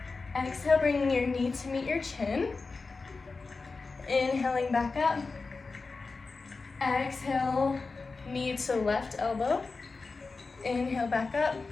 Exhale, bringing your knee to meet your chin. Inhaling back up. Exhale, knee to left elbow. Inhale back up.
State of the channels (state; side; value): quieter; right; 4.1 dB